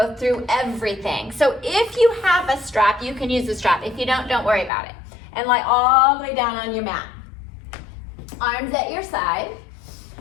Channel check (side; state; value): right; drops out; at 4.7 s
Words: through everything. So if you have a strap, you can use the strap. If you don't worry about it. And lie all the way down on your mat. Arms at your side.